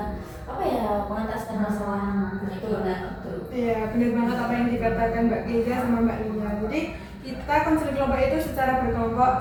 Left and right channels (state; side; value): identical; both; correlation 1.00